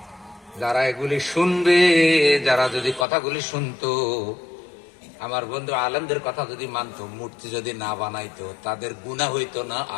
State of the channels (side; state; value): right; drops out; at 3.1 s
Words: যারা এগুলি শুনবে, যারা যদি কথাগুলি শুনতো, আমার বন্ধু আলেমদের কথা যদি মানতো, মূর্তি যদি না বানাইতো, তাদের গুনাহ হইতো না,